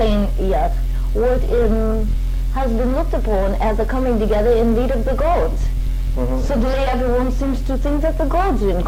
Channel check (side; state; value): both; identical; correlation 1.00